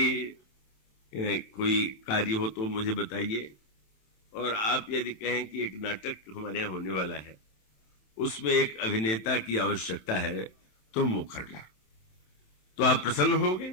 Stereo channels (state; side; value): late; right; 27 ms